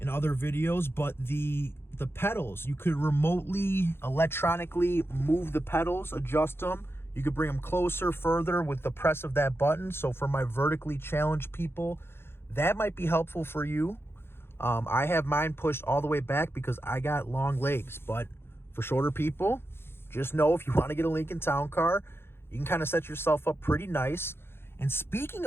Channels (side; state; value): right; late; 0.11 ms